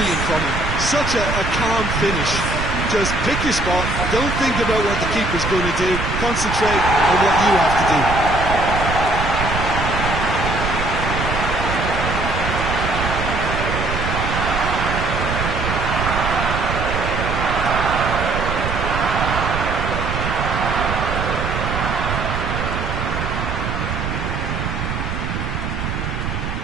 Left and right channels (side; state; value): right; noise; rumble, 3 dB below the sound